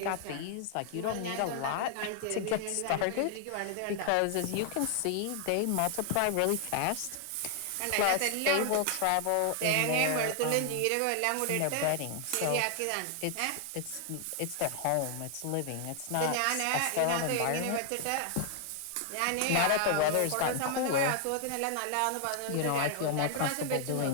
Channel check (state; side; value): different; both; correlation 0.00